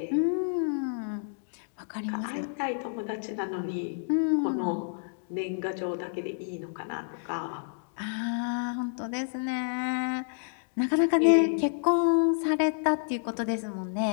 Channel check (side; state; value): right; silent; digital silence